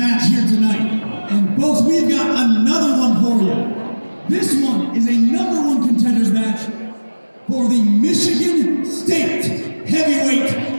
here tonight. And folks, we've got another one for you. This one is a #1 contenders match for the Michigan State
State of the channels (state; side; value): inverted; both; correlation -1.00